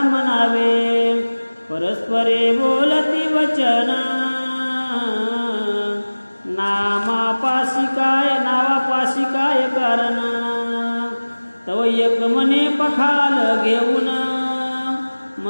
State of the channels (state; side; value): inverted; both; correlation -1.00